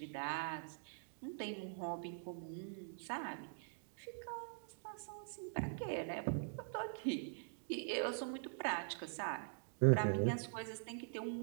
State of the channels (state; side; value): silent; left; digital silence